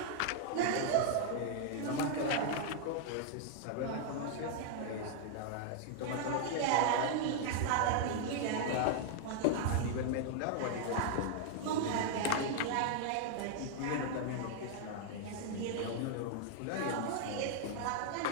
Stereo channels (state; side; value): different; both; correlation 0.00